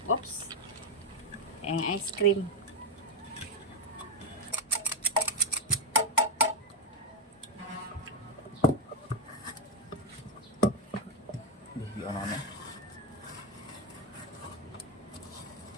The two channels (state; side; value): normal; both; correlation 0.05